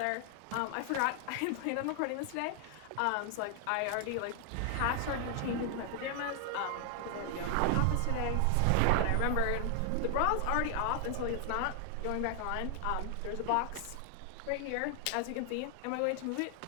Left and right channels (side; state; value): both; different; correlation 0.00